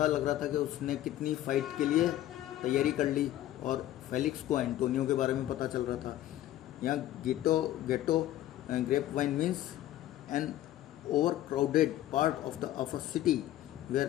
लग रहा था कि उसने कितनी फ़ाइट के लिए तैयारी कर ली, और फेलिक्स को एंटोनियो के बारे में पता चल रहा था। यहाँ ghetto grapevine means an overcrowded part of a city where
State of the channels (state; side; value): quieter; right; 13.6 dB